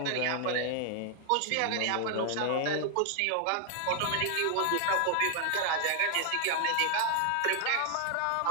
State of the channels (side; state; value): both; different; correlation 0.00